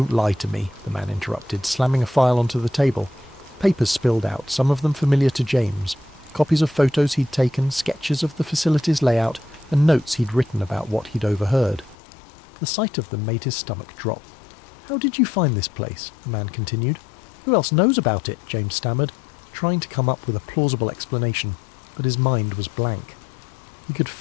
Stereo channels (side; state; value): right; drops out; at 12.0 s